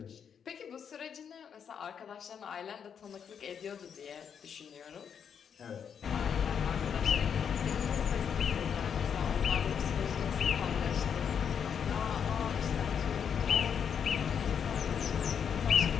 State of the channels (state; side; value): quieter; right; 7.5 dB